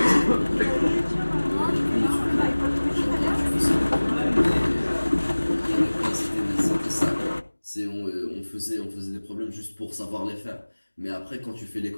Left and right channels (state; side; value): inverted; both; correlation -1.00